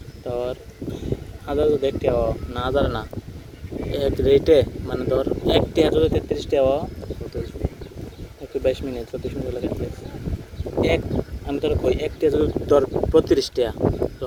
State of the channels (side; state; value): both; identical; correlation 1.00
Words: তোর হাজার যদি 1 টাকা না হাজার না এক রেটে মানে ধর 1 টাকা যদি 33 টাকা 22 মিনিট 34 মিনিট লাগে এক আমি তোর কই 1 টাকা যদি তোর 32 টাকা